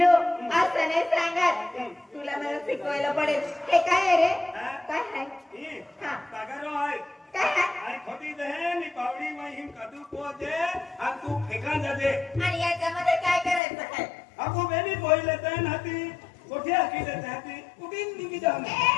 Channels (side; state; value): right; drops out; at 13.6 s